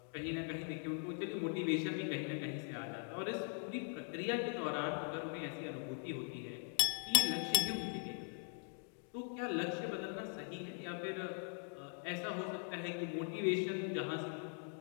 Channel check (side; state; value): right; silent; 50 dB below the other